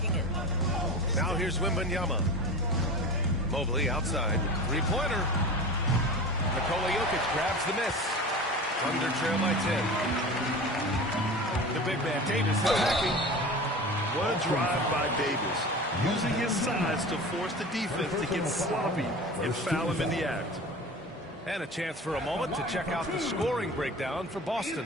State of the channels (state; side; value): normal; both; correlation 0.34